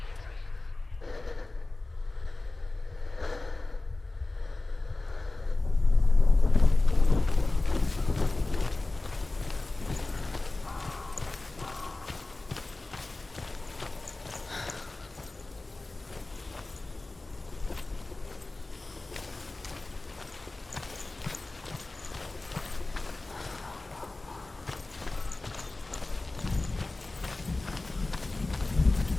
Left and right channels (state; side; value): quieter; right; 3.1 dB